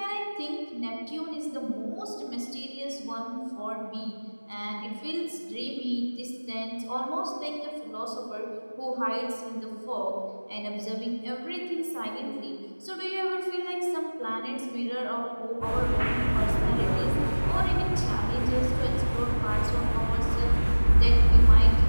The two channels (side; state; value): both; inverted; correlation -1.00